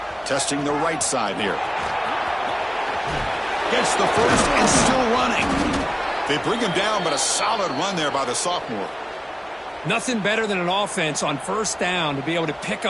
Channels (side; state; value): both; identical; correlation 1.00